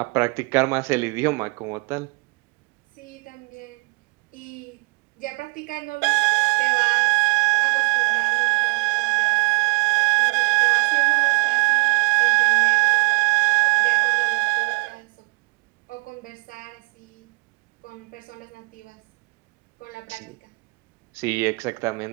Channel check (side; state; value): left; quieter; 26.8 dB